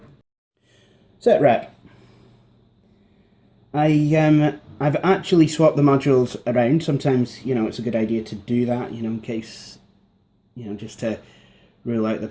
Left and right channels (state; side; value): identical; both; correlation 1.00